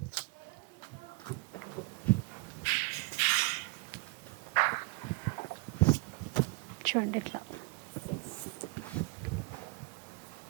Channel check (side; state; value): left; quieter; 27.3 dB